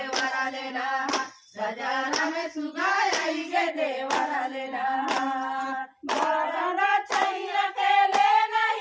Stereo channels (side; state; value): both; identical; correlation 1.00